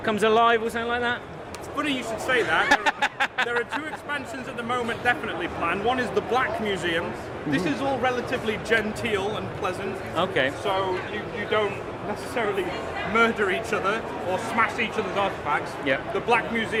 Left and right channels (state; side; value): identical; both; correlation 1.00